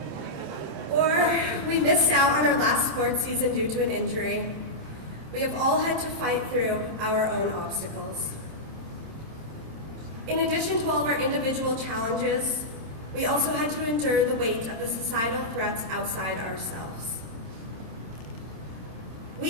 or we missed out on our last sports season due to an injury, we have all had to fight through our own obstacles. In addition to all of our individual challenges, we also had to endure the weight of the societal threats outside ourselves.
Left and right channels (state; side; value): late; left; 27 ms